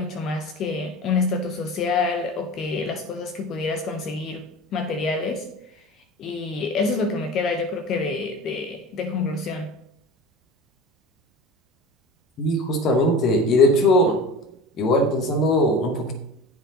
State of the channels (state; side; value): normal; both; correlation 0.35